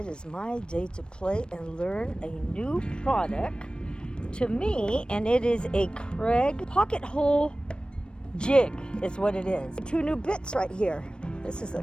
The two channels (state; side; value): late; right; 0.054 ms